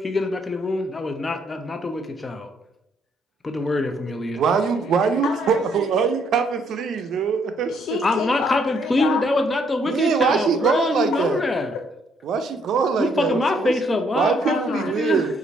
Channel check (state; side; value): normal; both; correlation 0.69